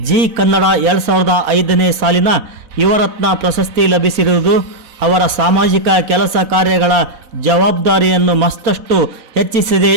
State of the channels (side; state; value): left; late; 4.0 ms